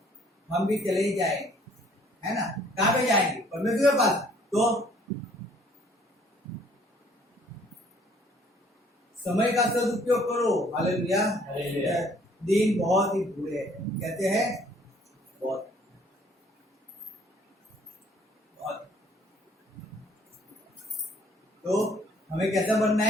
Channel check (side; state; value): both; normal; correlation 0.60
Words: हम भी चले ही जाएंगे, है ना। कहाँ पे जाएंगे? परमेश्वर के पास। तो समय का सदुपयोग करो। हालेलुया। दिन बहुत ही बुरे हैं, कहते हैं बहुत बहुत। तो हमें कैसा बनना